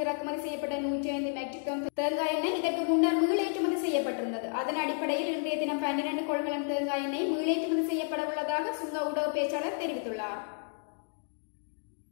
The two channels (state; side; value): silent; right; 57 dB below the other